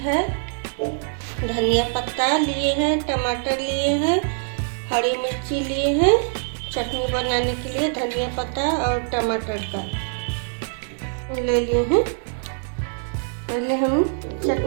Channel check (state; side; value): silent; left; digital silence